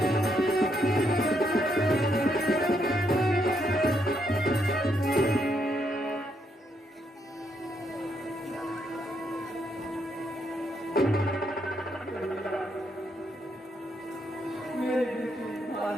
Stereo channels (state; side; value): normal; both; correlation 0.76